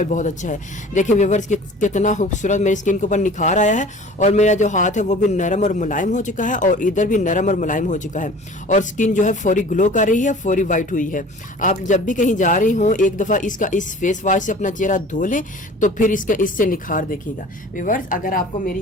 बहुत अच्छा है। देखिए व्यूअर्स कितना खूबसूरत मेरी स्किन के ऊपर निखार आया है और मेरा जो हाथ है वो भी नरम और मुलायम हो चुका है और इधर भी नरम और मुलायम हो चुका है और स्किन जो है फौरी ग्लो कर रही है, फौरी वाइट हुई है। आप जब भी कहीं जा रही हो एक दफा इस फेस वॉश से अपना चेहरा धो लें तो फिर इससे निखार देखिएगा। व्यूअर्स अगर आपको मेरी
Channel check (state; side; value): normal; both; correlation 0.44